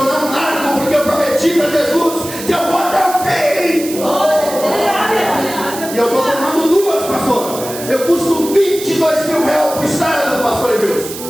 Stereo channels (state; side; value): noise; right; hiss, 11 dB below the sound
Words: não largo, porque eu prometi para Jesus que eu vou até o fim. E eu estou tomando 2, pastor. Eu custo 22 mil reais por estado, pastor Edilson,